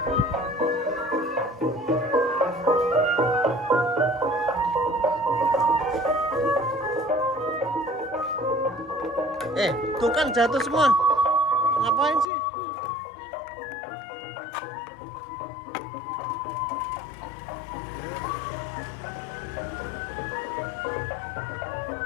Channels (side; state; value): right; drops out; at 12.2 s